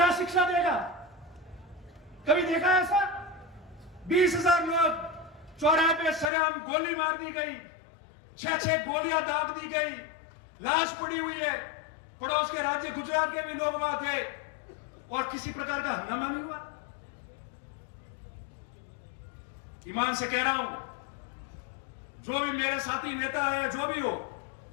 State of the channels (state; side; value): drops out; right; at 6.3 s